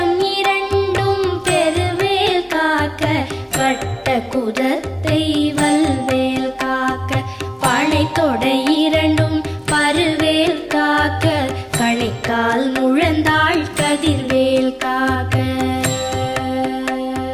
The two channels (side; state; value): both; identical; correlation 1.00